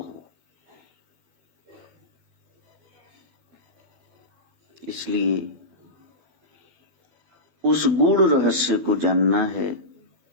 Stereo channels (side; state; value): left; late; 12 ms